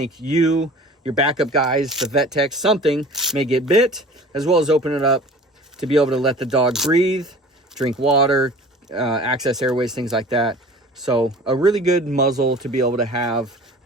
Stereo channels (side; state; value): both; normal; correlation 0.43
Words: your backup guys, the vet tech, something may get bit, as well as open it up to be able to let the dog breathe, drink water, access airways, things like that. So a really good muzzle to be able to have